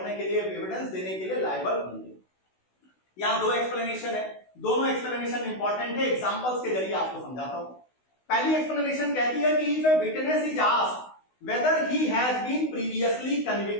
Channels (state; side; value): late; right; 16 ms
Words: के लिए एविडेंस देने के लिए लायबल होंगे। यहां दो एक्सप्लेनेशन है, दोनों एक्सप्लेनेशन इंपॉर्टेंट है, एग्जांपल्स के जरिए आपको समझाता हूं। पहली एक्सप्लेनेशन कहती है कि if a witness is asked whether he has been previously